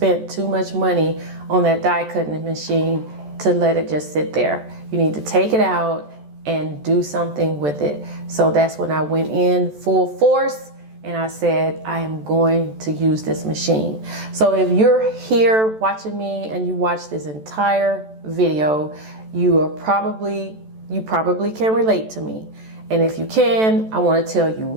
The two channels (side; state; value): left; late; 14 ms